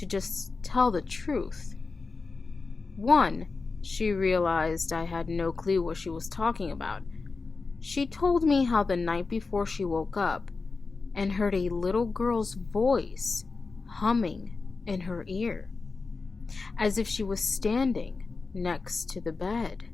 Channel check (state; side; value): quieter; right; 4.2 dB